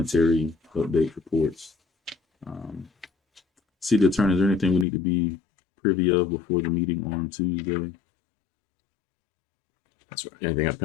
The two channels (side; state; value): right; drops out; at 4.9 s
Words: update, reports. City attorney, is there anything we need to be privy of before the meeting on Tuesday? That's right. Anything